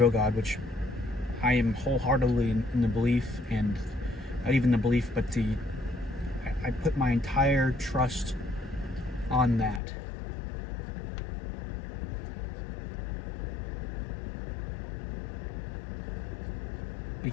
God, which I am wholeheartedly in the belief, and not even the belief, but I put my entire trust on that.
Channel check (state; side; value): drops out; right; at 9.8 s